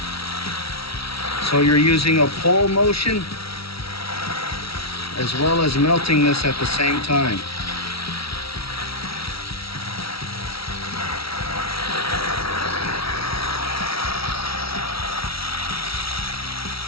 So you're using a pull motion as well as melting this at the same time.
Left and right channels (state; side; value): late; right; 0.75 ms